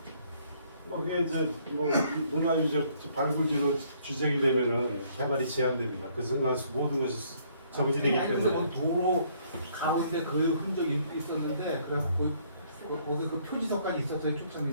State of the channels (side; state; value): both; inverted; correlation -0.65